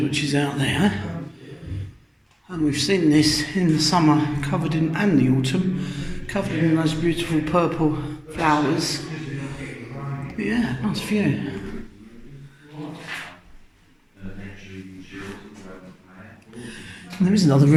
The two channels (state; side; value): identical; both; correlation 1.00